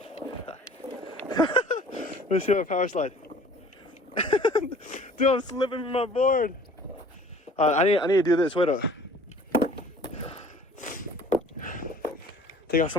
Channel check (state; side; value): normal; both; correlation 0.50